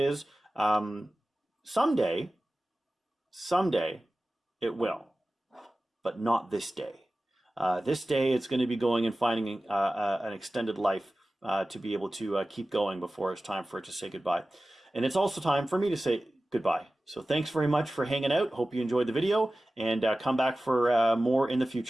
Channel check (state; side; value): normal; both; correlation 0.96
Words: Someday it will. But not this day. This day, it's going to be going and finding an extended life to be able to keep going before it's time for it to say goodbye. And it's also time for me to say goodbye. So thanks very much for hanging out. Hope you enjoyed the video, and come back for more in the